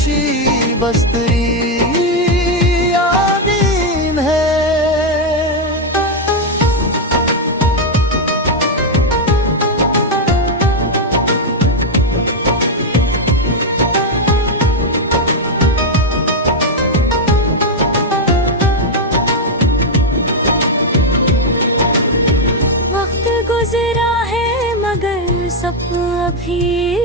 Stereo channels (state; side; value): normal; both; correlation 0.02